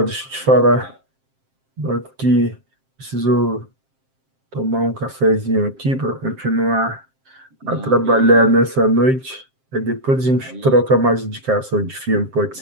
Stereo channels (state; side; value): late; left; 7.6 ms